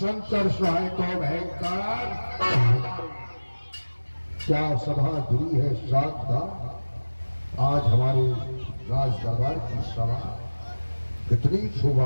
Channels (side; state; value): both; inverted; correlation -1.00